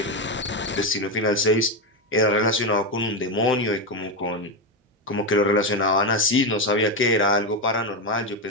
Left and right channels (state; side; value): normal; both; correlation 0.10